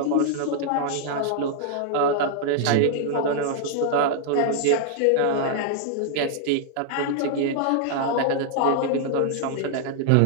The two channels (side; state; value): both; different; correlation 0.00